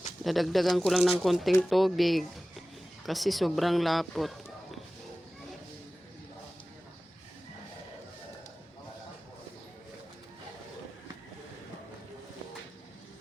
Dadagdagan ko lang ng konting tubig. Kasi sobrang lapot.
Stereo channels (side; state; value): both; normal; correlation 0.96